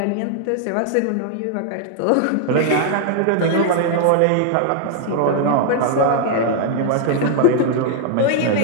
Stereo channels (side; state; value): both; different; correlation 0.00